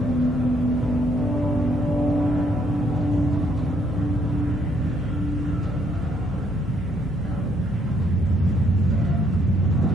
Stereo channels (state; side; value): normal; both; correlation 0.69